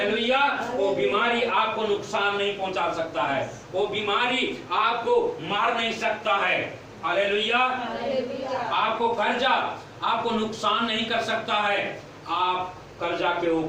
वो बीमारी आपको नुकसान नहीं पहुंचा सकता है, वो बीमारी आपको मार नहीं सकता है। हालेलुया। आपको कर्जा आपको नुकसान नहीं कर सकता है। आप कर्जा के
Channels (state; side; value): identical; both; correlation 1.00